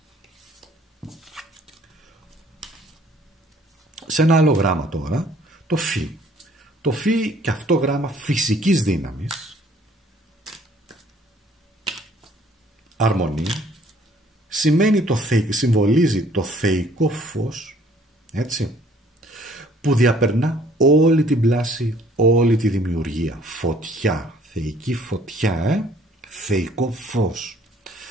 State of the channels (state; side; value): normal; both; correlation 0.59